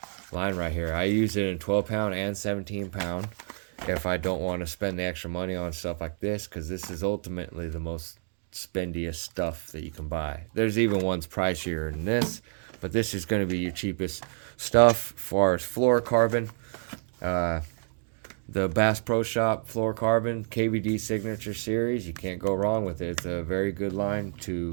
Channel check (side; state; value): left; silent; digital silence